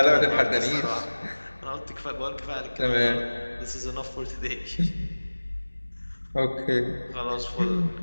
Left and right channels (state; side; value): inverted; both; correlation -1.00